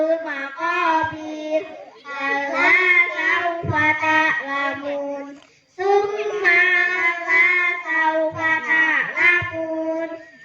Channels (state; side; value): identical; both; correlation 1.00